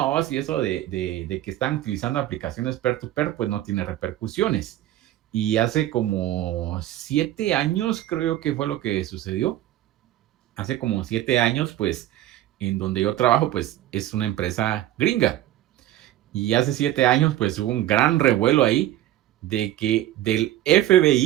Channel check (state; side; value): quieter; left; 13.9 dB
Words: si eso de que están utilizando aplicaciones peer-to-peer, pues no tiene repercusiones. Y hace como 7 años, creo que fue lo que sucedió. Hace como 7 años, pues, en donde yo trabajo, pues, es una empresa gringa. Y hace 7 años, pues hubo un gran revuelo ahí de que del